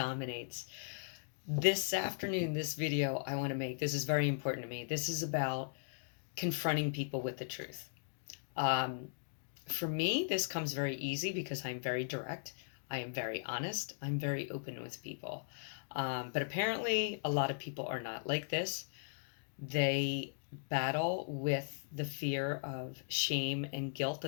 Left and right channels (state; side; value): silent; right; digital silence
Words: This afternoon, this video I want to make, this is very important to me. This is about confronting people with the truth. For me, this comes very easy because I'm very direct. I am very honest. I'm very open with people. But apparently, a lot of people are not like this. They battle with the fear of shame and guilt